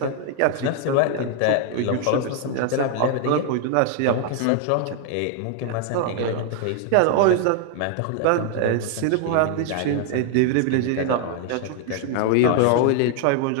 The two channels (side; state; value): both; different; correlation 0.00